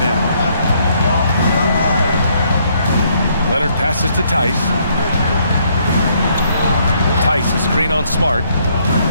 Leonard passes to Tice. Tice, a screen on Smart.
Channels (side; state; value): both; inverted; correlation -0.69